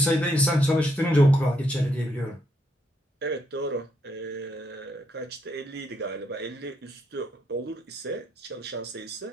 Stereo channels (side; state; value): both; normal; correlation 0.76